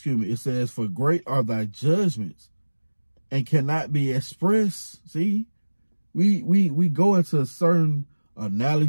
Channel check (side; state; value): both; inverted; correlation -1.00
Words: for great are thy judgments and cannot be expressed. See? We go into certain